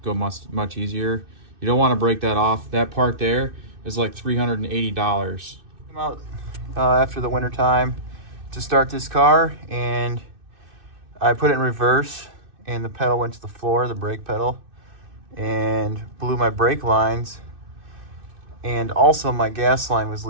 go much easier. You don't want to break that off. That part there is like $380. Come out after the winter time to start this car, and I put it in reverse and the pedal went to the floor, the brake pedal, and blew my brake lines, and also my gas line was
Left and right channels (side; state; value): left; late; 2.6 ms